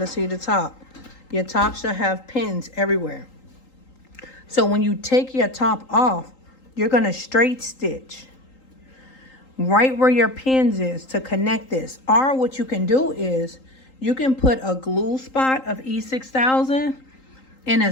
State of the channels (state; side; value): late; right; 3.8 ms